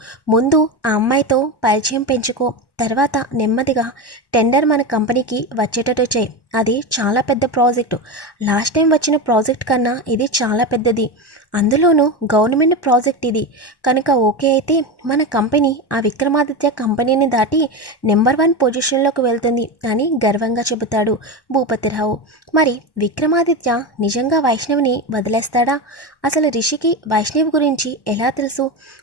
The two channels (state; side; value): late; right; 1.1 ms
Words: ముందు ఆ అమ్మాయితో పరిచయం పెంచుకో, తర్వాత నెమ్మదిగా టెండర్ మన కంపెనీకి వచ్చేటట్టు చేయి. అది చాలా పెద్ద ప్రాజెక్టు. లాస్ట్ టైం వచ్చిన ప్రాజెక్ట్ కన్నా ఇది చాలా పెద్దది. అందులోనూ గవర్నమెంట్ ప్రాజెక్ట్ ఇది. కనుక ఓకే అయితే మన కంపెనీ ఆ విక్రమాదిత్య కంపెనీని దాటి నెంబర్ 1 పొజిషన్లోకి వెళ్తుంది అని గర్వంగా చెబుతాడు భూపతిరావు. మరి విక్రమాదిత్య నిజంగా వైష్ణవిని వదిలేస్తాడా? అసలు రిషికి వైష్ణవి గురించి ఎలా తెలుసు?